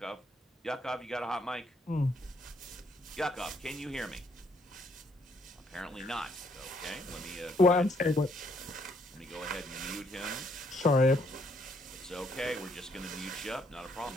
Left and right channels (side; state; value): both; normal; correlation 0.71